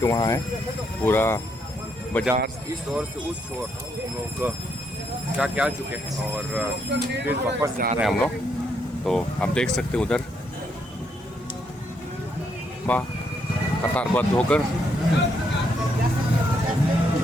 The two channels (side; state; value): both; normal; correlation 0.75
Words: वहाँ है, पूरा बाजार इस ओर से उस ओर हम लोग क्या चुके हैं और फिर वापस जा रहे हैं हम लोग। तो आप देख सकते उधर वाह कतारबद्ध होकर